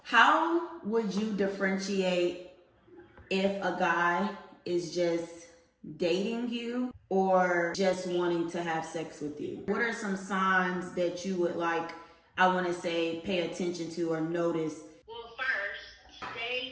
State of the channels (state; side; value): identical; both; correlation 1.00